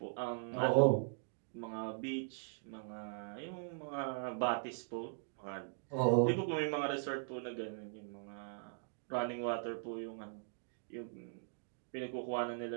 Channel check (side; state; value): left; silent; digital silence